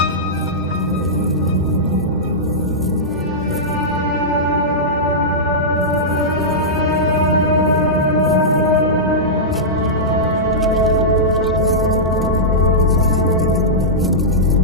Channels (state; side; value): normal; both; correlation -0.12